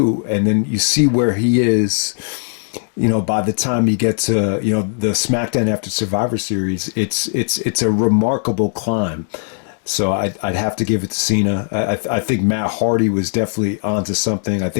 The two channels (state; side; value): silent; right; digital silence